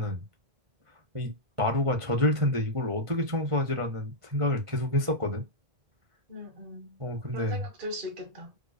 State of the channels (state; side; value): late; left; 1.5 ms